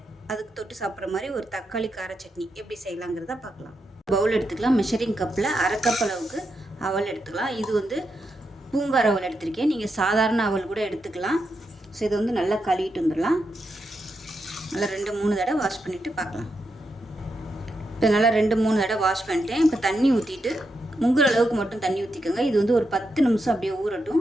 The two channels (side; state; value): both; normal; correlation 0.84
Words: அதுக்கு தொட்டு சாப்பிட்ற மாதிரி ஒரு தக்காளி கார சட்னி எப்படி செய்யலாங்கிறத பார்க்கலாம். பவுல் எடுத்துக்கலாம். மெஷரிங் கப்பில் அரை கப் அளவுக்கு அவல் எடுத்துக்கலாம். இது வந்து பூங்கார் அவல் எடுத்திருக்கேன். நீங்கள் சாதாரண அவல் கூட எடுத்துக்கலாம். ஸோ இதை வந்து நல்லா கழுவிட்டு வந்துடலாம். நல்லா 2-3 தடவை வாஷ் பண்ணிவிட்டு பார்க்கலாம். இப்போ நல்லா 2-3 தடவை வாஷ் பண்ணிட்டேன். இப்போ தண்ணி ஊற்றிட்டு முங்குற அளவுக்கு மட்டும் தண்ணி ஊற்றிக்கோங்க. இது வந்து ஒரு 10 நிமிஷம் அப்படியே ஊறட்டும்.